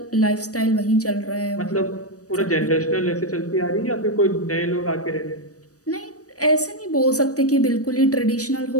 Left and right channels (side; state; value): right; late; 0.66 ms